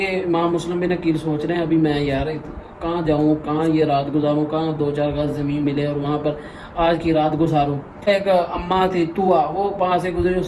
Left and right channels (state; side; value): identical; both; correlation 1.00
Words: امام مسلم بن عقیل سوچ رہے ہیں ابھی میں یار کہاں جاؤں, کہاں یہ رات گزاروں, کہاں 2-4 گز زمین ملے اور وہاں پر آج کی رات گزاروں. ایک اماں تھی طوا, وہ وہاں سے گزری,